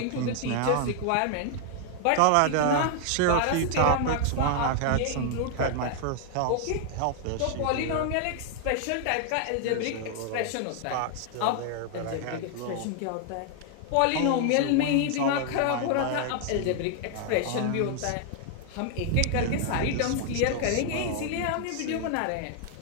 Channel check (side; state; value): both; different; correlation 0.00